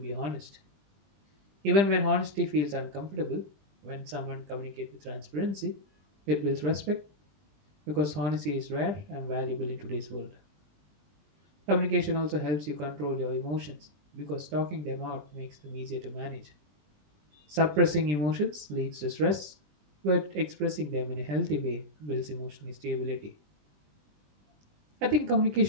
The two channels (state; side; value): late; left; 20 ms